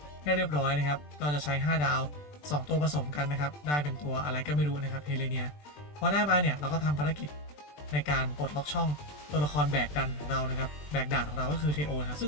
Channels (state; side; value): late; right; 20 ms